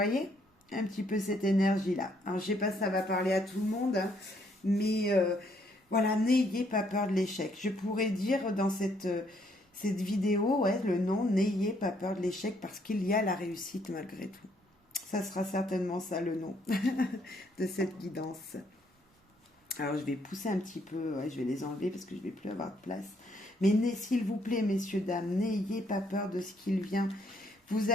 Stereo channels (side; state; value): both; normal; correlation 0.69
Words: un petit peu cette énergie-là. Alors, je sais pas si ça va parler à tout le monde, hein, mais voilà, n'ayez pas peur de l'échec. Je pourrais dire dans cette vidéo, ouais, le nom, n'ayez pas peur de l'échec parce qu'il y a la réussite malgré tout. Ça sera certainement ça le nom de cette guidance. Alors, je vais pousser un petit peu, ouais, je vais les enlever parce que je ne vais plus avoir de place. Mais s'il vous plaît, messieurs, dames, n'ayez pas peur de ce qu'il vient. Vous